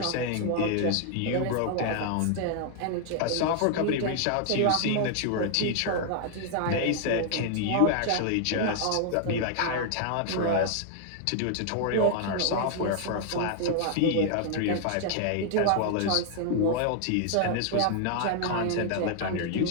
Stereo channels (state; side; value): different; both; correlation 0.00